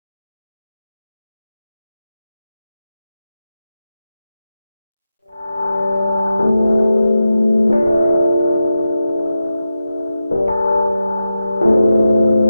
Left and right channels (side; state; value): both; inverted; correlation -0.90